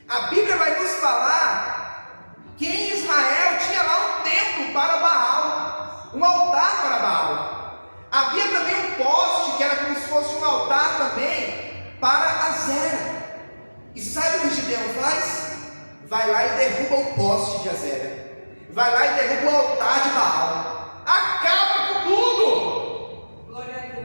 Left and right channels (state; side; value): inverted; both; correlation -1.00